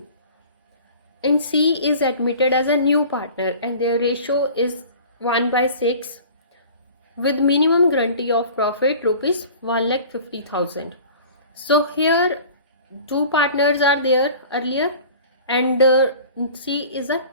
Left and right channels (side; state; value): both; inverted; correlation -0.43